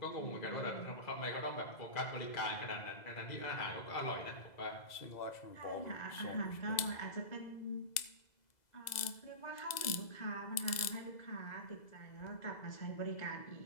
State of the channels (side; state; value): right; late; 2.0 ms